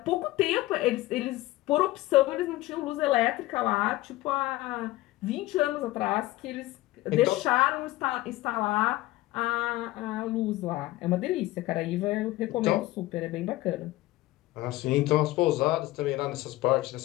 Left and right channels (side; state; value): right; quieter; 17.9 dB